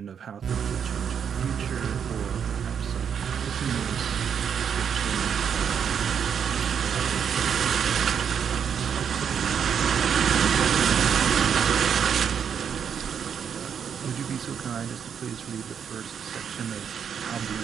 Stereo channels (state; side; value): quieter; left; 7.6 dB